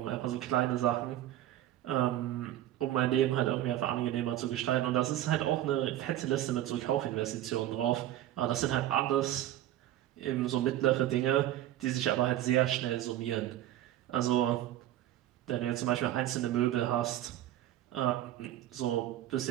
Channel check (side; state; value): left; quieter; 13.2 dB